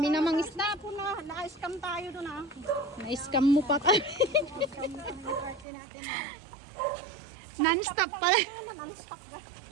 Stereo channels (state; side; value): drops out; left; at 5.7 s